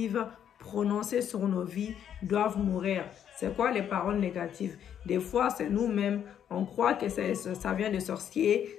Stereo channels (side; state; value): right; quieter; 9.3 dB